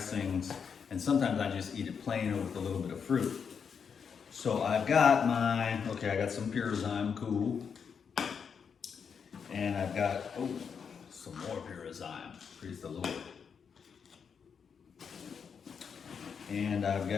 and sometimes I just eat it plain or with a little bit of fruit. So I've got I got some Pyrazyme, cool. And I've got, some more Pyrazyme, praise the Lord. And I've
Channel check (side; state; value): right; quieter; 6.6 dB